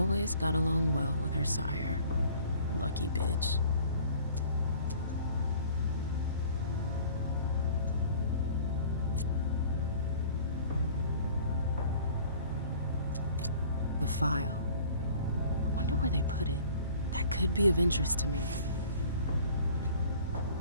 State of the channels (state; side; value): inverted; both; correlation -0.50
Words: got along well with her sire. Lucky bitch. The file. Wonder where they put it. That could be of interest to me.